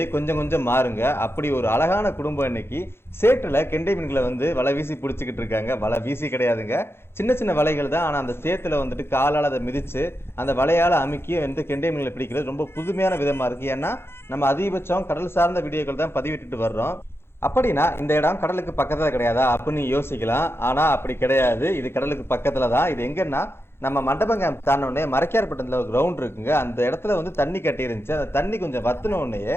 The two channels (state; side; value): late; right; 0.12 ms